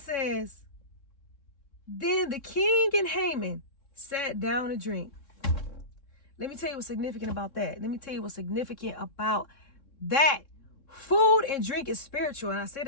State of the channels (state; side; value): late; right; 3.6 ms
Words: then the king and Haman sat down to drink. Let me tell you what's significant about that. Food and drink is spiritual, and I say